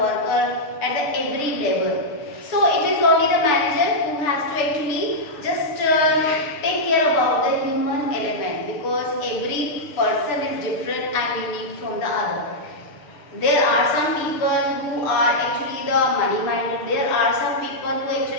at the every level. So it is only the manager who has to actually just take care about the human element, because every person is different and unique from the other. There are some people who are actually the money minded. There are some people who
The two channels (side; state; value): right; late; 6.8 ms